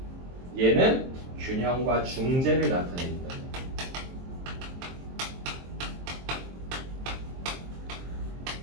얘는 균형과 중재를 나타내기 때문에.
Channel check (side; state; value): left; late; 23 ms